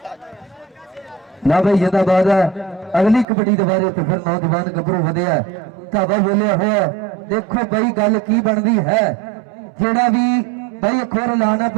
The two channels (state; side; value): drops out; left; at 3.2 s